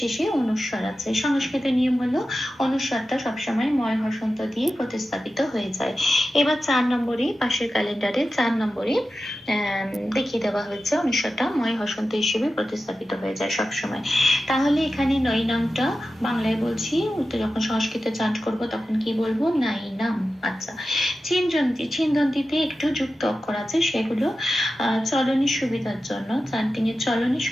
অনুস্বার আছে। সংস্কৃতের নিয়ম হলো অনুস্বারটা সবসময় ময় হসন্ত দিয়ে প্রতিস্থাপিত হয়ে যায়। এবার 4 নম্বরে পাশের ক্যালেন্ডারে 4 নম্বরে দেখিয়ে দেওয়া হয়েছে অনুস্বারটা ময় হসন্ত হিসেবে প্রতিস্থাপিত হয়ে যায় সবসময়। তাহলে এখানে নৈনামটা বাংলায় বলছি, যখন সংস্কৃতে চান্ট করব তখন কি বলবো? নাইনাম। আচ্ছা, ছিন্দন্তিতে একটু যুক্ত অক্ষর আছে, সেগুলো চলনের সুবিধার জন্য, চান্টিং এর চলনের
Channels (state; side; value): normal; both; correlation 0.93